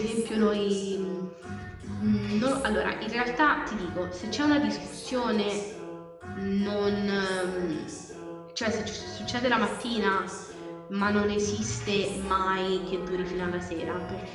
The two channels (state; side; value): identical; both; correlation 1.00